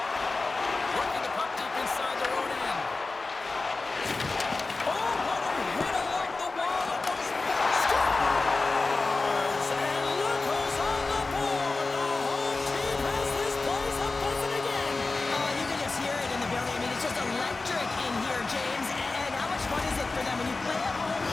Working the puck deep inside their own end. Oh, what a hit along the wall! Almost scores! And look who's on the board! The home team has this place a buzzing again! Oh, you can just hear it in the building. I mean, it's just electric in here, James. And how much fun is it for them when you play at home,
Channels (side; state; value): right; quieter; 3.6 dB